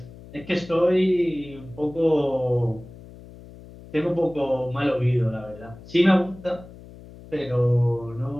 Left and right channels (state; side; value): noise; left; hum, 18 dB below the sound